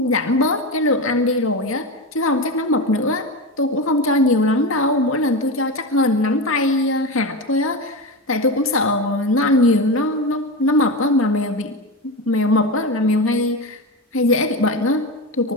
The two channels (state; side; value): normal; both; correlation 0.20